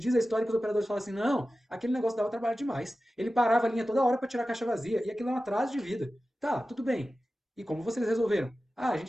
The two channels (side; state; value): both; normal; correlation 0.94